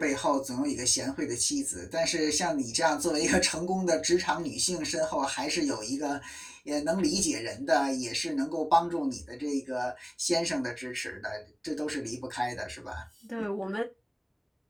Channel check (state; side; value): identical; both; correlation 1.00